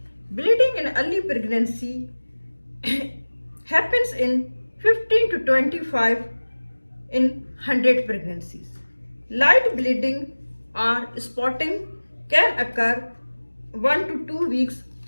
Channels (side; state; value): both; inverted; correlation -1.00